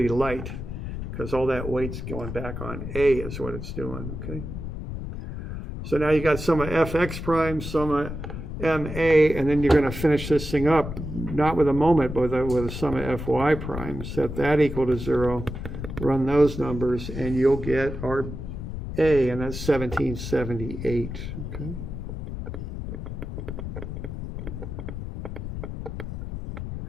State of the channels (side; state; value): left; noise; rumble, 7 dB below the sound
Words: light because all that weight's going back on A is what it's doing, okay? So now you got sum of fx prime, sum of ma, and then you're going to finish this thing up, not with a moment, but with a sum of fy prime. Set that equal to 0, run those numbers, and you'll get our A, and that's 1778, okay?